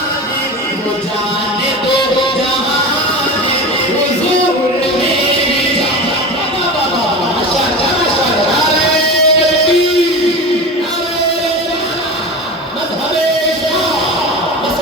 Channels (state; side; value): normal; both; correlation 0.28